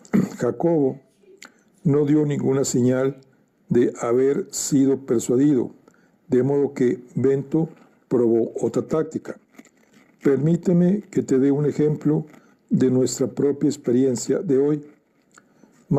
Jacobo no dio ninguna señal de haber sido persuadido, de modo que Bento probó otra táctica. Permíteme que te dé un ejemplo de nuestra propia experiencia de hoy.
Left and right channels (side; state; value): both; identical; correlation 1.00